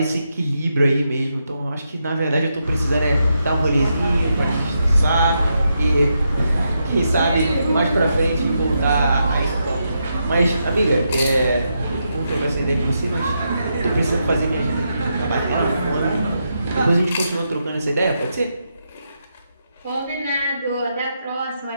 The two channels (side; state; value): both; inverted; correlation -0.83